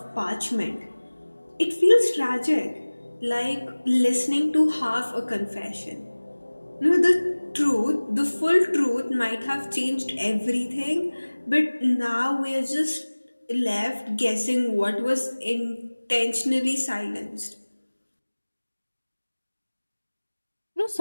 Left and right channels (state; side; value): inverted; both; correlation -1.00